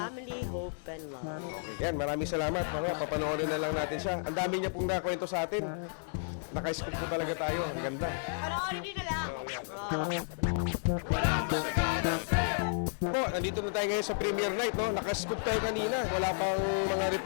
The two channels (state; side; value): silent; right; digital silence